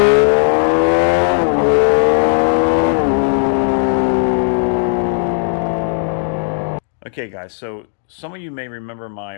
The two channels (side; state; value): right; silent; digital silence